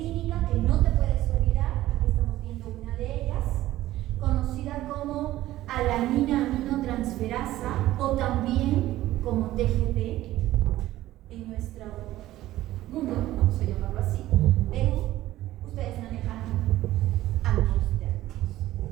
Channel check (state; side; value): quieter; left; 15.2 dB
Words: transferasa o también como TGP en nuestro mundo, vamos a llamarlo así, Perú, ustedes manejan ambos términos,